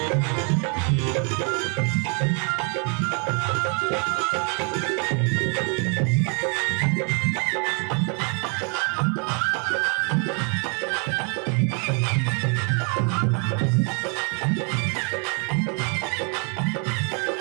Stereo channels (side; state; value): left; quieter; 37.9 dB